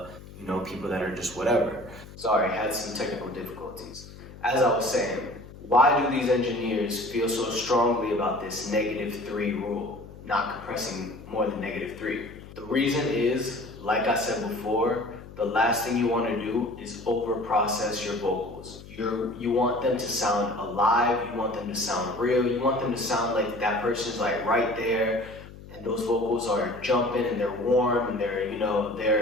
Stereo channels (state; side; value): noise; left; hum, 17 dB below the sound